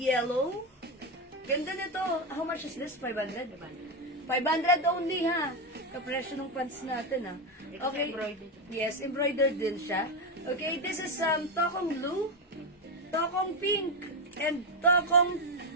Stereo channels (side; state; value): both; normal; correlation 0.10